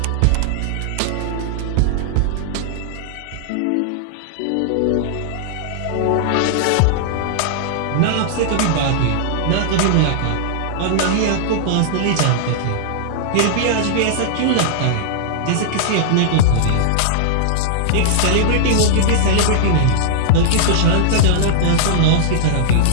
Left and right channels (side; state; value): both; different; correlation -0.01